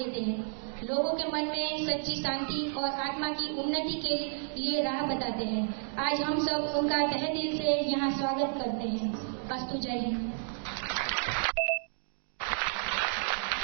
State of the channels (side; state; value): left; silent; digital silence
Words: हैं। लोगों के मन में सच्ची शांति और आत्मा की उन्नति के लिए राह बताते हैं। आज हम सब उनका तहे दिल से यहाँ स्वागत करते हैं। अस्तु। जय हिंद।